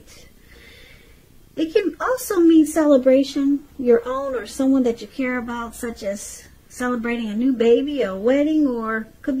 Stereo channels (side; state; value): both; identical; correlation 1.00